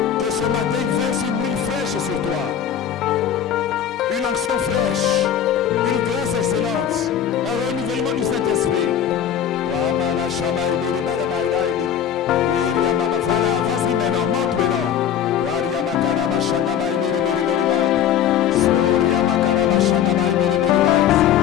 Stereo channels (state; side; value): quieter; right; 9.2 dB